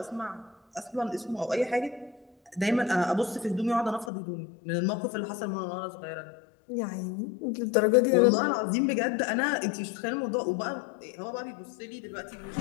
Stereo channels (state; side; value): drops out; right; at 4.1 s